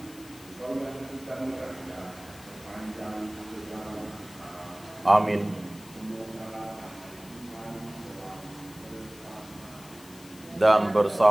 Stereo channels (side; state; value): left; noise; hiss, 20 dB below the sound